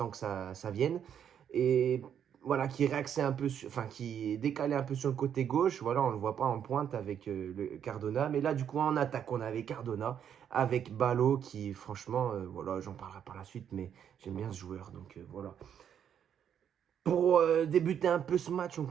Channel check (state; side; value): quieter; left; 8.8 dB